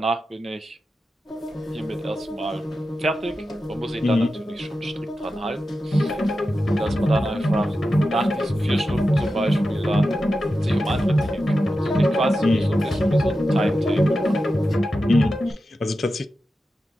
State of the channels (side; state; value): both; normal; correlation 0.91